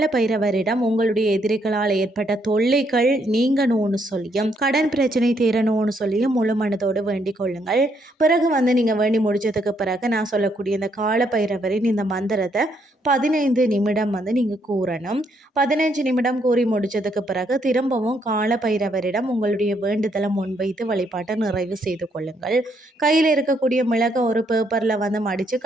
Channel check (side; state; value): both; normal; correlation 0.73